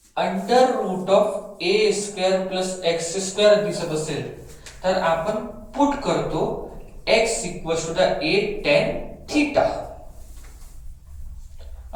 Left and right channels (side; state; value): both; identical; correlation 1.00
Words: under root of A square plus x square दिसत असेल तर आपण पुट करतो x equals to the a tan theta